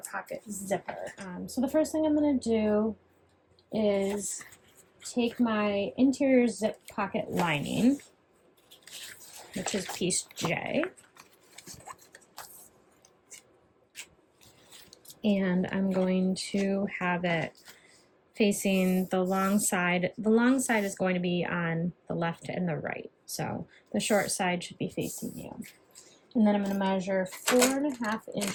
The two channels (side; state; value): both; identical; correlation 1.00